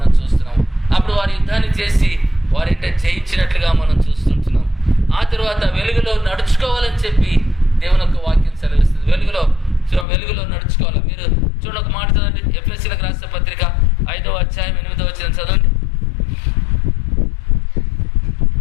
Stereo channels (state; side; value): drops out; right; at 10.1 s